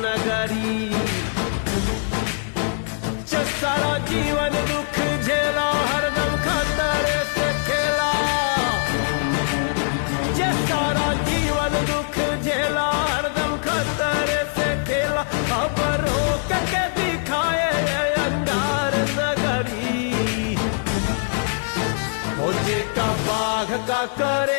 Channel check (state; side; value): silent; right; 55 dB below the other